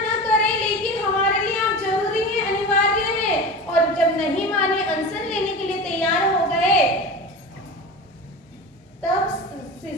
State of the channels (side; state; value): both; normal; correlation 0.30